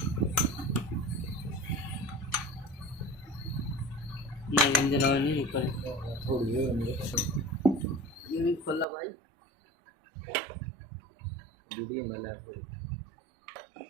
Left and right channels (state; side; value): drops out; left; at 8.8 s